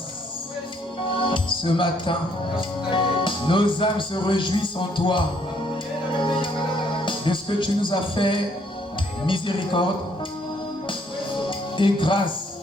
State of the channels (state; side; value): normal; both; correlation 0.67